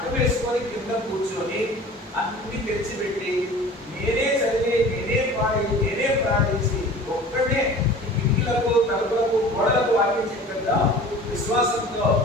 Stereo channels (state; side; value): normal; both; correlation 0.42